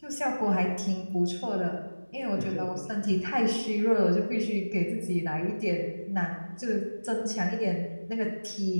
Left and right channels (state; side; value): inverted; both; correlation -1.00